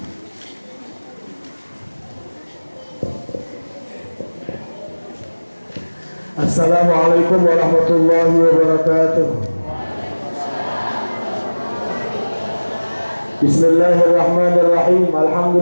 Assalamualaikum warahmatullahi wabarakatuh. Bismillahirrahmanirrahim.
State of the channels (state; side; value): inverted; both; correlation -1.00